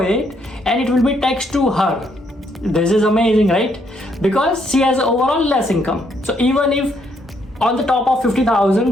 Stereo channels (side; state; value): both; normal; correlation 0.72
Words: and it will be taxed to her. This is amazing, right? Because she has overall less income. So even if on the top of